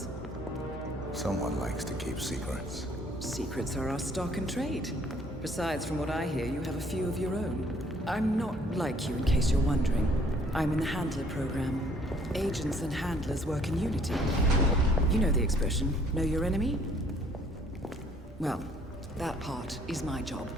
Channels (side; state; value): both; normal; correlation 0.60